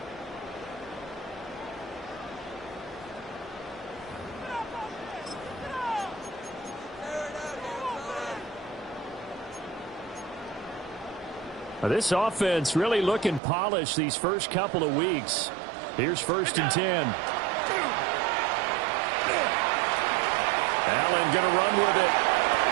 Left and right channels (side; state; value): left; drops out; at 13.4 s